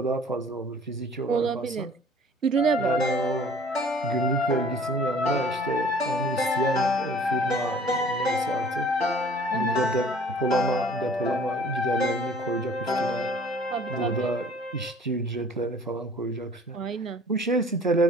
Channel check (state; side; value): normal; both; correlation 0.51